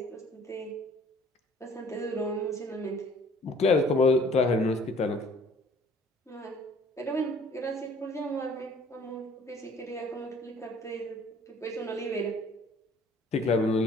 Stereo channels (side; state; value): both; normal; correlation 0.55